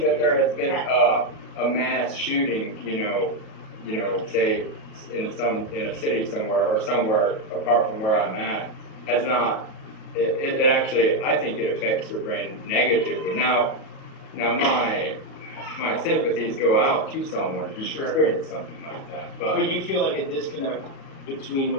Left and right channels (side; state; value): right; late; 37 ms